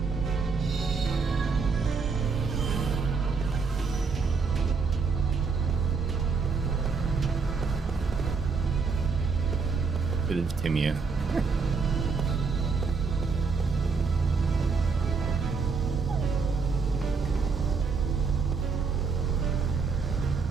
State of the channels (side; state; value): left; quieter; 5.0 dB